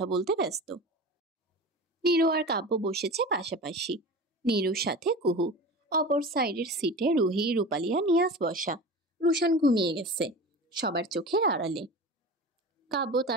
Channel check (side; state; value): both; normal; correlation 0.33